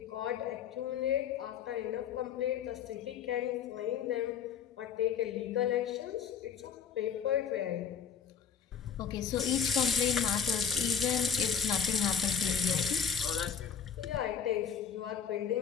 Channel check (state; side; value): quieter; right; 7.3 dB